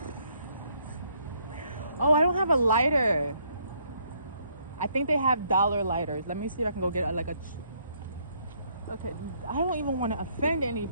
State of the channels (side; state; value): both; inverted; correlation -0.69